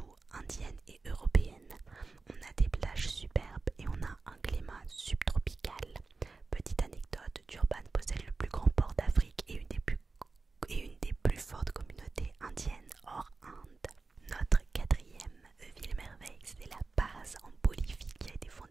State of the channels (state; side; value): quieter; left; 4.0 dB